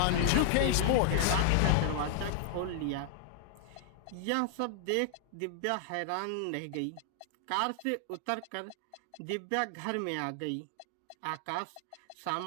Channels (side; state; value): both; different; correlation -0.01